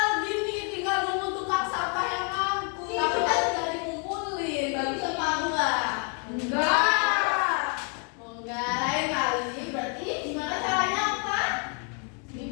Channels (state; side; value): quieter; right; 39.8 dB